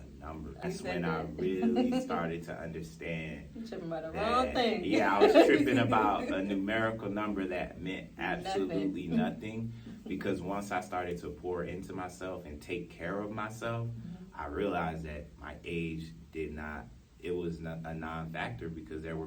number. That's when I really started to understand. You're tripping about the wrong thing. Yeah, I was tripping about a numerical number that meant absolutely nothing. Because once I started to pour into myself and take care of myself, I realized that my age it was not a non-factor because there were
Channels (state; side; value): identical; both; correlation 1.00